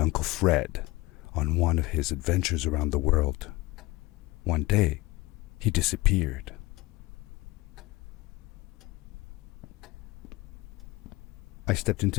Fred on one of his adventures around the world. One day, he disappeared. I stepped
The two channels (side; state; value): right; quieter; 21.4 dB